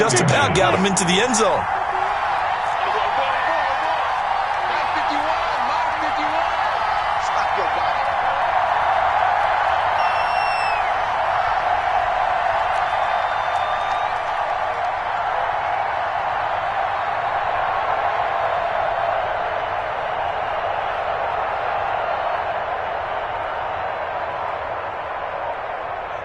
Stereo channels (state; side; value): identical; both; correlation 1.00